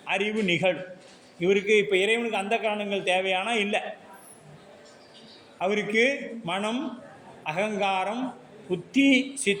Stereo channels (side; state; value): both; identical; correlation 1.00